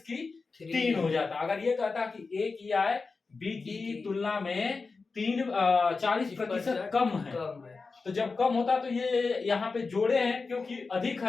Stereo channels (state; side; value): quieter; right; 4.3 dB